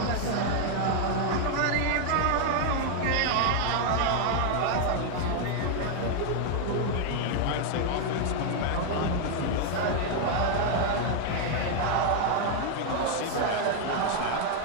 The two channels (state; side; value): different; both; correlation 0.00